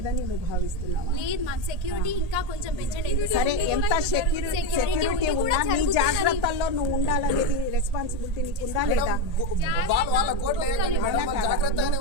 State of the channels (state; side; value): late; left; 1.8 ms